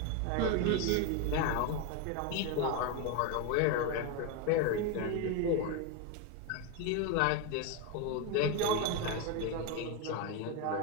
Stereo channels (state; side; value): different; both; correlation 0.02